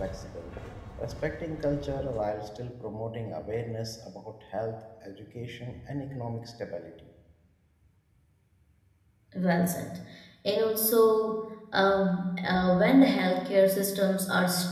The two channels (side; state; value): both; identical; correlation 1.00